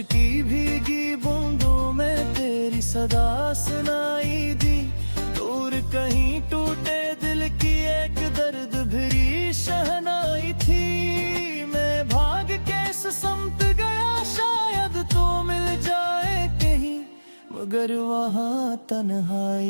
की भीगी बूंदों में तेरी सदा सुनाई दी, दूर कहीं टूटे दिल की एक दर्द भरी शहनाई थी। मैं भाग के समत गया शायद तो मिल जाए कहीं, मगर वहाँ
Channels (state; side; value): inverted; both; correlation -1.00